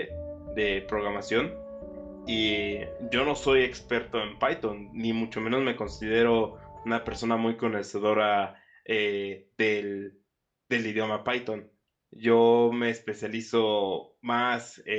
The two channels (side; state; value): both; identical; correlation 1.00